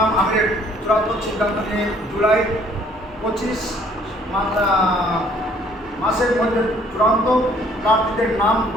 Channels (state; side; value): normal; both; correlation 0.60